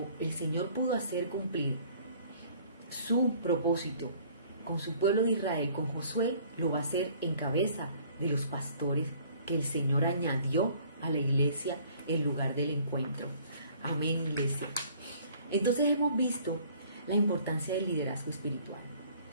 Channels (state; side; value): inverted; both; correlation -0.55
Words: el Señor pudo hacer cumplir su propósito con su pueblo de Israel, con Josué, lo va a hacer en cabeza de los pastores que el Señor añadió a la iglesia el lugar del encuentro. Amén, iglesia. Entonces hemos visto la importancia del liderazgo espiritual,